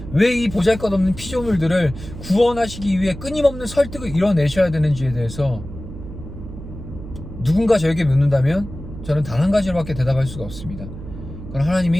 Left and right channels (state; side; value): noise; right; hum, 12 dB below the sound